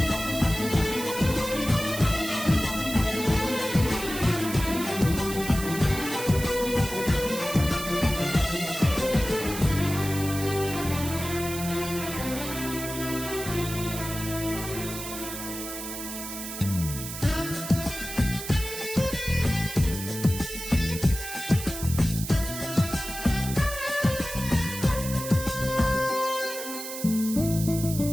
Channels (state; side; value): noise; right; hiss, 8 dB below the sound